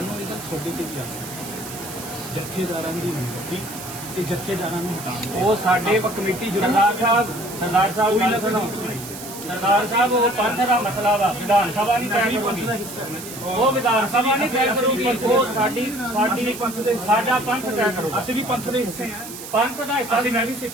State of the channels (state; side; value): noise; right; hiss, 12 dB below the sound